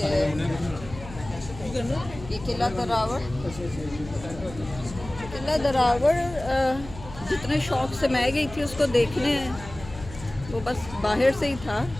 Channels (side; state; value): left; noise; hum, 15 dB below the sound